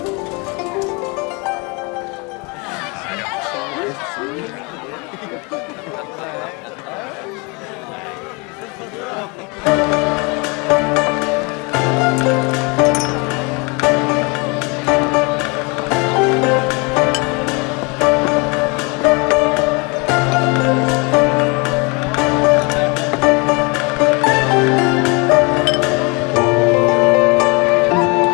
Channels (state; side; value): quieter; right; 29.8 dB